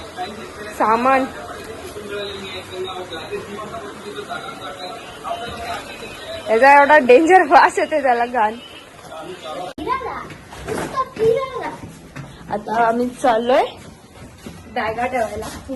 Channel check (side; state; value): both; identical; correlation 1.00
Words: सामान. याचा एवढा डेंजर वास येते त्याला घाण. आता आम्ही चाललोय बॅगा ठेवायला,